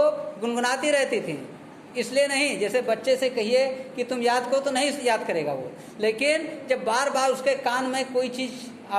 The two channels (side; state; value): both; identical; correlation 1.00